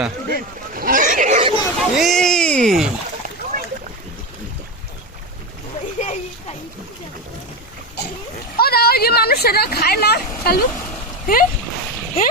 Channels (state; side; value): normal; both; correlation 0.17